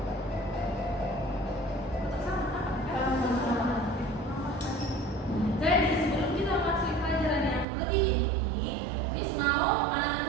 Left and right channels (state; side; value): drops out; left; at 7.7 s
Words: Jadi sebelum kita masuk pelajaran yang lebih inti, Miss mau